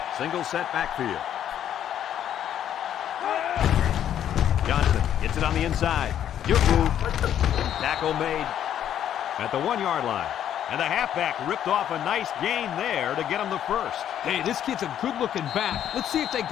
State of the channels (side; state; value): right; quieter; 10.3 dB